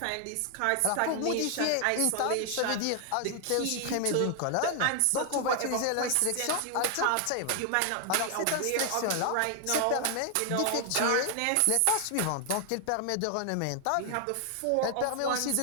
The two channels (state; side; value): different; both; correlation 0.00